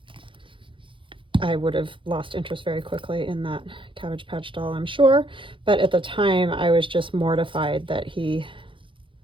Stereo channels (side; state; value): left; late; 0.25 ms